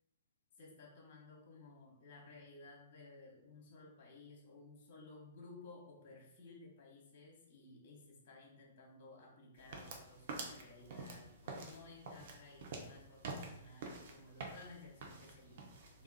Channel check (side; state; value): both; inverted; correlation -0.35